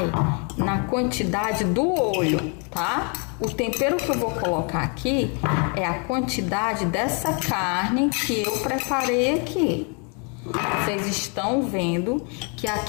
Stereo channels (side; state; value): right; quieter; 36.7 dB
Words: na quantidade do olho, tá? O tempero que eu vou colocar aqui é a quantidade dessa carne que eu preparei aqui. Vocês estão vendo que